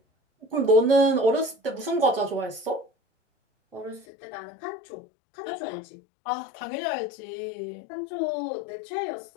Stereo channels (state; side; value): drops out; right; at 4.0 s